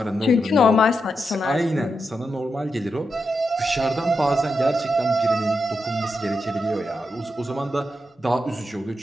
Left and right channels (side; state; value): both; normal; correlation 0.86